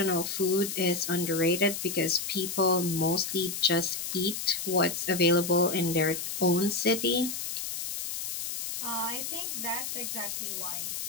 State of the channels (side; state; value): left; noise; hiss, 4 dB below the sound